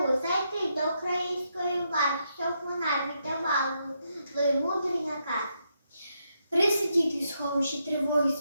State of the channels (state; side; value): inverted; both; correlation -0.80